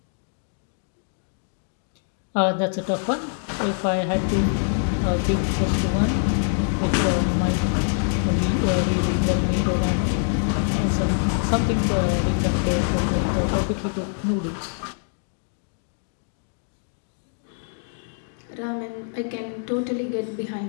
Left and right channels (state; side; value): silent; right; digital silence